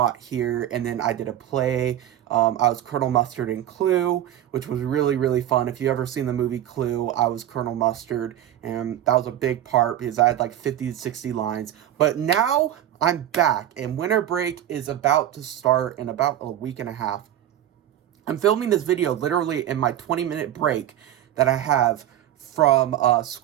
here, and then I did a play. I was Colonel Mustard in Clue, which was really, really fun. If you ever seen the movie Clue, I was Colonel Mustard, and that was a big part because I had like 50 to 60 lines. But now I'm back, and winter break is about to start in about a week and a half. I'm filming this video literally in my 20-minute break that I have from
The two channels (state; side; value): quieter; left; 11.8 dB